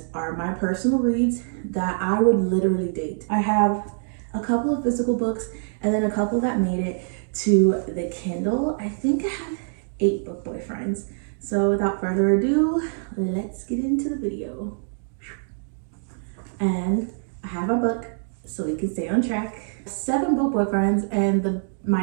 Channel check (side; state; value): left; silent; digital silence